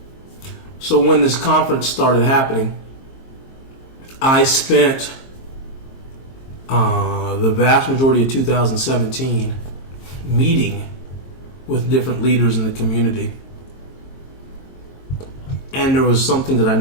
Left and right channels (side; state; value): right; late; 22 ms